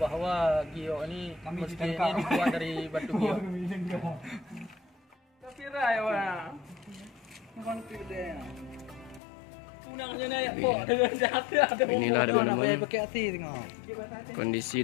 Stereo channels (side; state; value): right; drops out; at 9.2 s